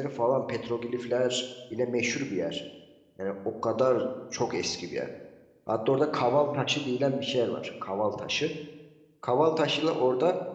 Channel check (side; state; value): both; identical; correlation 1.00